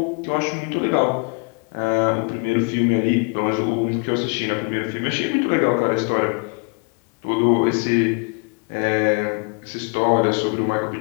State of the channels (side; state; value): right; quieter; 35.3 dB